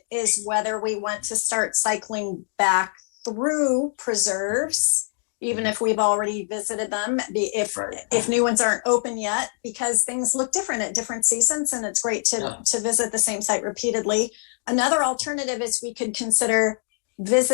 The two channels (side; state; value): right; silent; digital silence